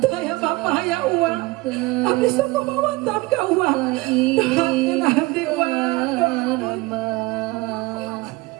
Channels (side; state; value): left; quieter; 21.7 dB